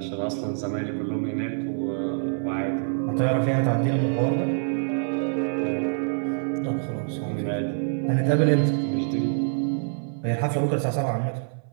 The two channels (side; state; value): left; silent; 57 dB below the other